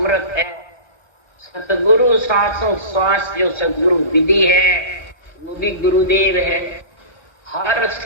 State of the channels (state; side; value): late; right; 1.4 ms